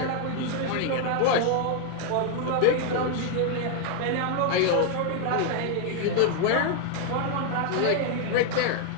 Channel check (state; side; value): different; both; correlation 0.00